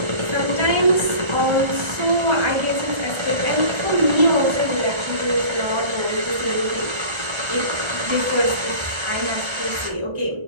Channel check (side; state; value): left; late; 1.3 ms